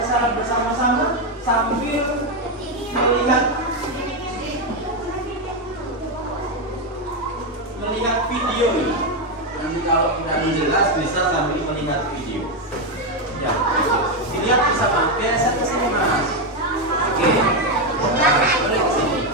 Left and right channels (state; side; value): normal; both; correlation 0.06